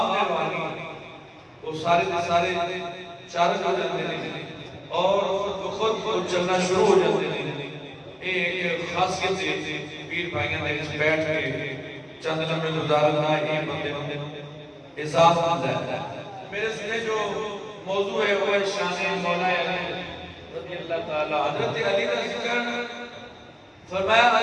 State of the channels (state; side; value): identical; both; correlation 1.00